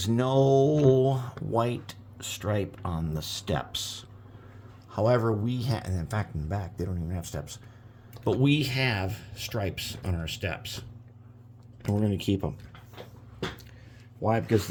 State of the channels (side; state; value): both; identical; correlation 1.00